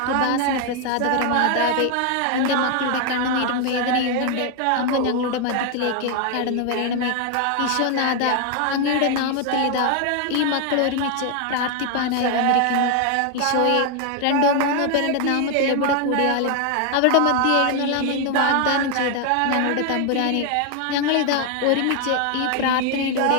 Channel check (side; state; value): both; different; correlation 0.00